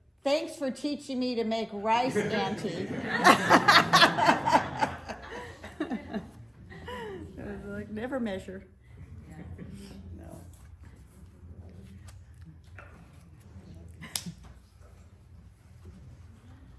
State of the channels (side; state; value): both; identical; correlation 1.00